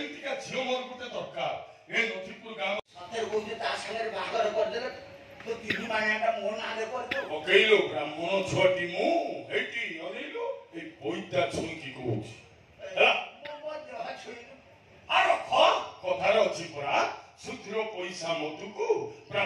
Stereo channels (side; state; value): both; identical; correlation 1.00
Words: ଝିଅ ମୋର ଗୋଟେ ଦରକାର ଏ ନଥିପୁର ଗାଁ ସତରେ କହୁଛି ତା ସାଙ୍ଗରେ ବାହାଘର କରିଦେଲେ ତୁ 3 ମାଣିଆଟା ମୋ ନାଁରେ କରିଦେବୁ ପକେଇଲୁ ବ୍ରାହ୍ମଣ ଛୁଆଟି ମୁଁ ଏଇଠି ଅନେଇଲୁ ଏଇ ପଇତା ଛୁଇଁକି କହୁଛି ହେଲା ମୋ ଦେହ ଛୁଇଁଲୁ ଆର କଥାରେ ଅଛି ପରା ଶୁଦ୍ର ପଇସା ମଧୁକୁ